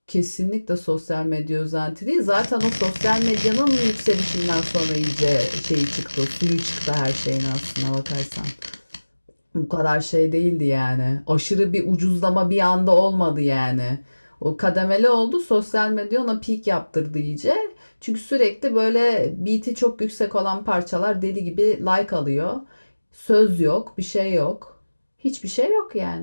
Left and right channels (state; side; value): inverted; both; correlation -1.00